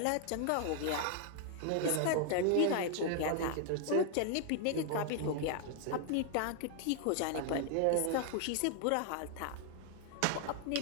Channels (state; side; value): different; both; correlation 0.00